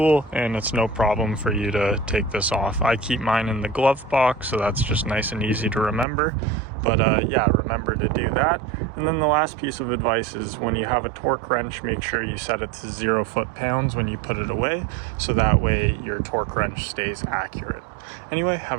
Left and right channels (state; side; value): drops out; left; at 6.1 s